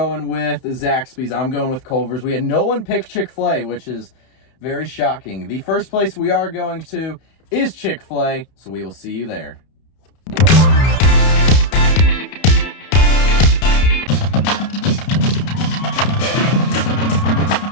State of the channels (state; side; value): late; right; 31 ms